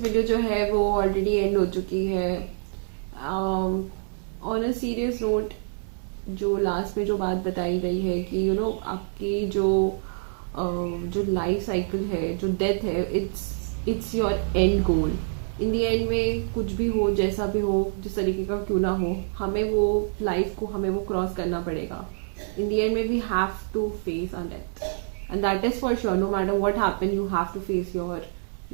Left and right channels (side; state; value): left; silent; 61 dB below the other